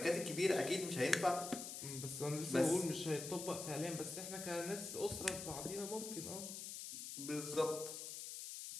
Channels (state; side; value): noise; left; hiss, 7 dB below the sound